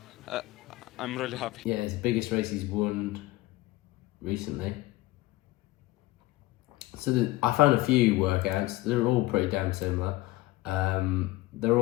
I'm really happy. Yeah, it's the biggest race he's won recently. So I found a few workouts. They're all pretty damn similar. They're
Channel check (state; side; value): quieter; right; 18.7 dB